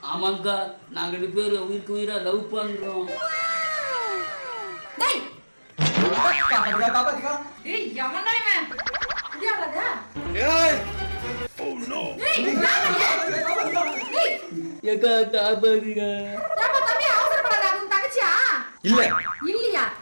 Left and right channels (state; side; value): inverted; both; correlation -1.00